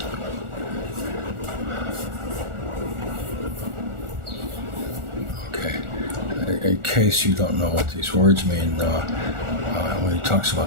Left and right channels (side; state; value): left; late; 1.4 ms